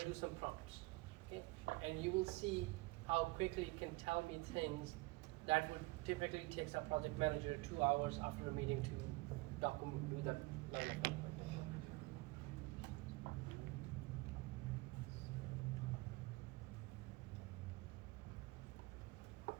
do some prompts. Okay. And you will see how quickly it can tell me things that would typically take a project manager 2 hours after a meeting to document, do that level of documentation.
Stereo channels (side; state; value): left; quieter; 23.0 dB